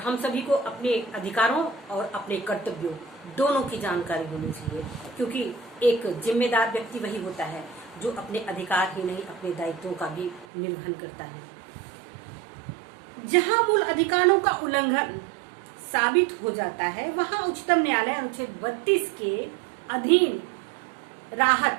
सभी को अपने अधिकारों और अपने कर्तव्यों दोनों की जानकारी होनी चाहिए, क्योंकि एक जिम्मेदार व्यक्ति वही होता है जो अपने अधिकार ही नहीं अपने दायित्वों का भी निर्वहन करता है। जहां मूल अधिकारों का उल्लंघन साबित हो जाता है, वहां उच्चतम न्यायालय अनुच्छेद 32 के अधीन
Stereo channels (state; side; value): drops out; left; at 10.5 s